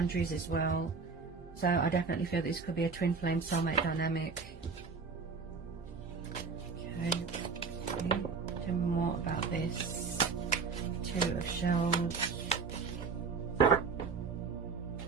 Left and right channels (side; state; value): left; quieter; 5.0 dB